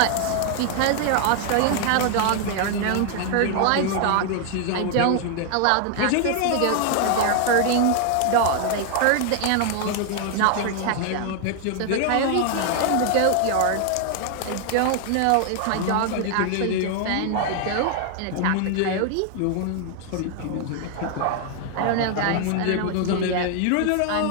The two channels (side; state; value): both; different; correlation 0.00